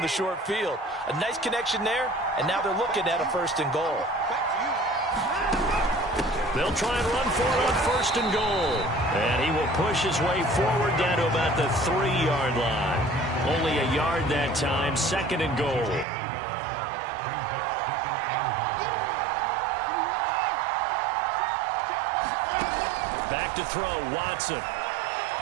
the short field. A nice connection there, and now they're looking at a 1st and goal. They'll try and run for it on 1st and goal. And he will push his way forward down to about the 3-yard line. Only a yard that time, 2nd and goal. Back to throw, Watson.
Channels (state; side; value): drops out; left; at 16.1 s